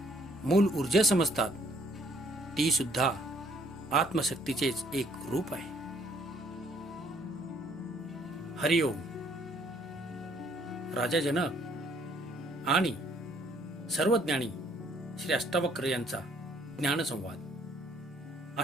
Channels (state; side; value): normal; both; correlation 0.64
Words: मूल ऊर्जा समजतात, ती सुद्धा आत्मशक्तीचेच एक रूप आहे. हरिओम. राजा जनक आणि सर्वज्ञानी श्री अष्टावक्र यांचा ज्ञानसंवाद.